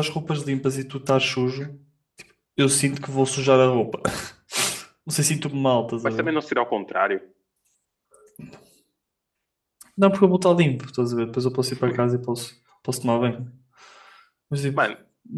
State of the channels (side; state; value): both; identical; correlation 1.00